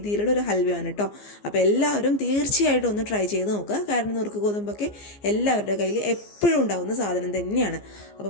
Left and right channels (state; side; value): late; right; 14 ms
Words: ഒരു ഹൽവയാണ് കേട്ടോ. അപ്പോൾ എല്ലാവരും തീർച്ചയായിട്ടും ഒന്ന് ട്രൈ ചെയ്ത് നോക്കുക. കാരണം നുറുക്ക് ഗോതമ്പൊക്കെ എല്ലാവരുടെ കയ്യിൽ എപ്പോഴും ഉണ്ടാകുന്ന സാധനം തന്നെയാണ്. അപ്പോൾ